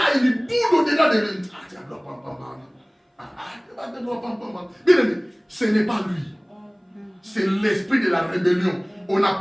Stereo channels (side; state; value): both; identical; correlation 1.00